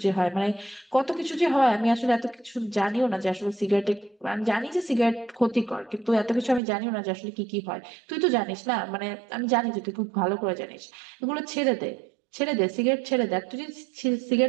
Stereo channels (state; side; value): drops out; left; at 6.6 s